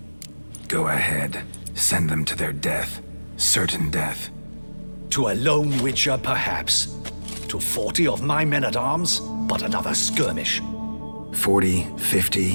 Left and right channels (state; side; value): inverted; both; correlation -1.00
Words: Go ahead. Send them to their death. Certain death. To a lone Witcher, perhaps. To 40 of my men-at-arms, but another skirmish. 40,